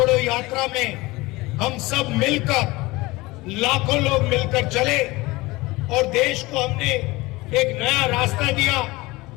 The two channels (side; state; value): right; quieter; 21.4 dB